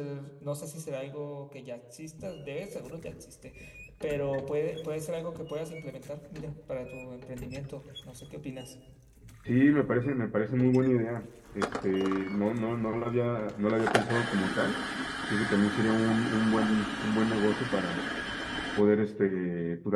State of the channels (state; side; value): identical; both; correlation 1.00